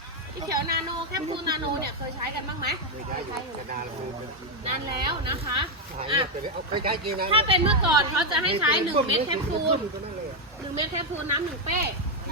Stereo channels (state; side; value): normal; both; correlation 0.03